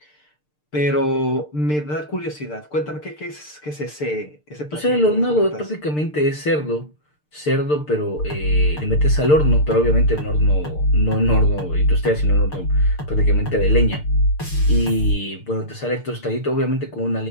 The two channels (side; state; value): right; late; 6.7 ms